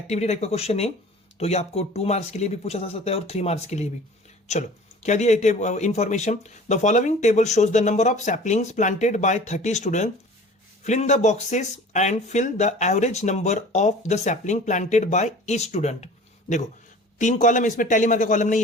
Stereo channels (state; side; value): normal; both; correlation 0.44